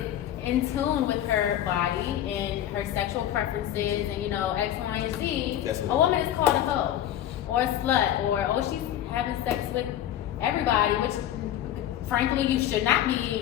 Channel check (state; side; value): quieter; right; 11.7 dB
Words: in tune with her body and her sexual preferences and X, Y, and Z, That's what a woman is called a hoe or a slut or she's having sex with everybody, which frankly you should not